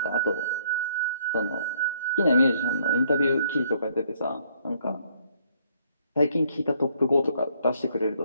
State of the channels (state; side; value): inverted; both; correlation -0.67